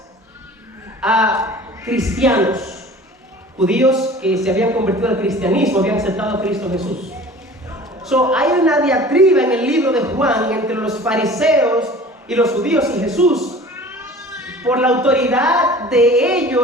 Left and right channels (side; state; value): both; normal; correlation 0.44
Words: a cristianos, judíos que se habían convertido al cristianismo, habían aceptado a Cristo Jesús. Hay una diatriba en el libro de Juan entre los fariseos y los judíos y Jesús, por la autoridad de